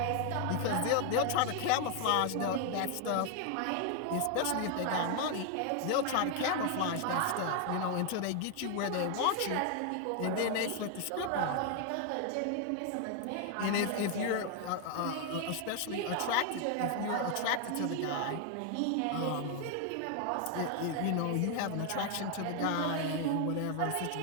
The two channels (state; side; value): different; both; correlation 0.00